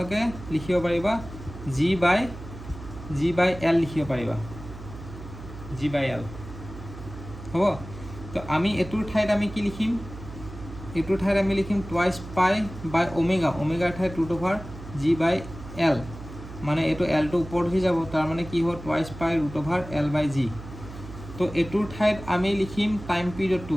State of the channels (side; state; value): right; noise; hum, 13 dB below the sound